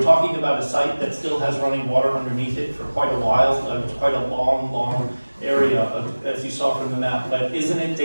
talking about a site that still has running water underneath it for quite a while. It's quite a long area, as you saw from the map. But isn't it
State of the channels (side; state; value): both; inverted; correlation -1.00